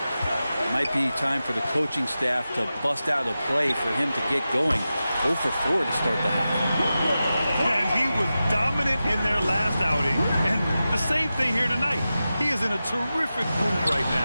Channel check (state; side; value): inverted; both; correlation -0.93